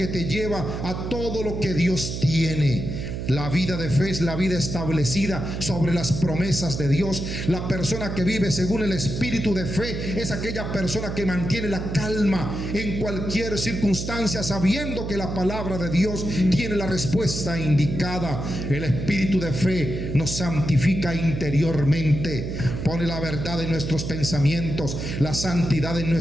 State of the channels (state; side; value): noise; right; hum, 5 dB below the sound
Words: te lleva a todo lo que Dios tiene. La vida de fe es la vida establecida sobre las promesas de Dios. La persona que vive según el espíritu de fe es aquella persona que mantiene la calma en cualquier circunstancia, sabiendo que la palabra de Dios tiene la respuesta indicada. El espíritu de fe nos santifica interiormente, pone la verdad en nuestros pensamientos, la santidad en